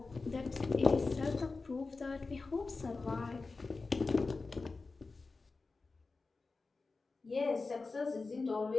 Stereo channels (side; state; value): right; quieter; 3.9 dB